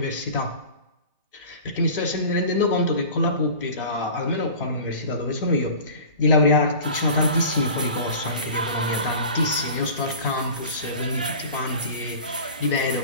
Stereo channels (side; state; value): both; inverted; correlation -0.39